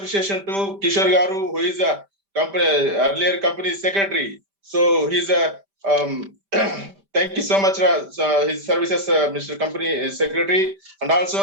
to Kishore Garu, who is a company earlier company secretary. So he's a thank you so much, his services, Mr. Company Secretary, and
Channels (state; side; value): late; left; 5.1 ms